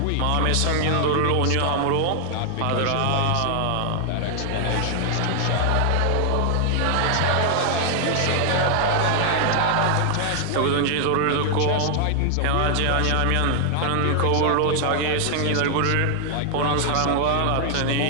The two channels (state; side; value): different; both; correlation 0.00